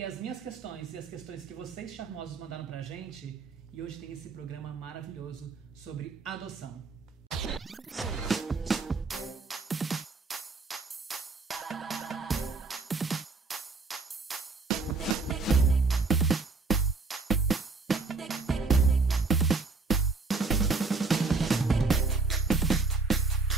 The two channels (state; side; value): quieter; left; 4.0 dB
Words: as minhas questões e as questões que vocês charmosos mandaram pra gente, e hoje tem esse programa maravilhoso sobre adoção.